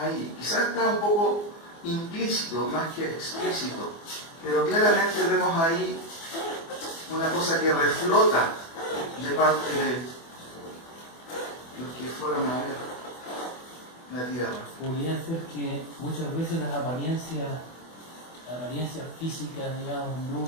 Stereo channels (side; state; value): right; late; 24 ms